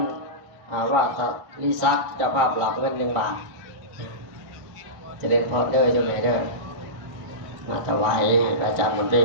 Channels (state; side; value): late; left; 1.7 ms